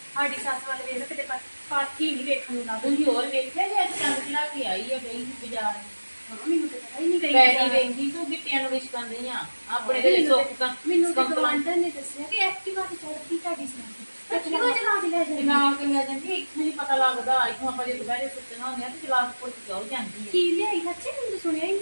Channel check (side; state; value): both; inverted; correlation -1.00